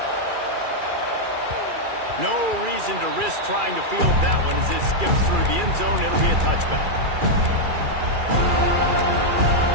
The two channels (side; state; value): left; late; 2.4 ms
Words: No reason to risk trying to field that one as it skips through the end zone. It'll be a touchback.